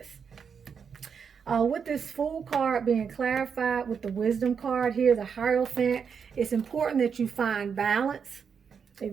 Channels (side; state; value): left; quieter; 6.6 dB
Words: With this Fool card being clarified with the Wisdom card here, the Hierophant, it's important that you find balance. It